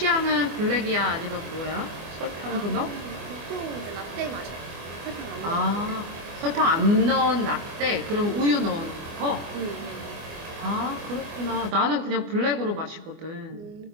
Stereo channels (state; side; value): late; left; 24 ms